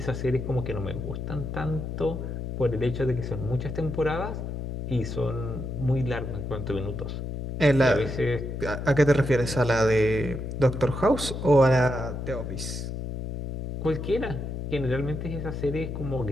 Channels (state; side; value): noise; left; hum, 5 dB below the sound